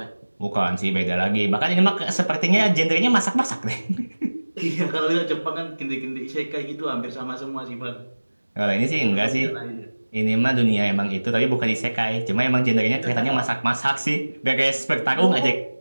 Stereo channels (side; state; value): both; inverted; correlation -1.00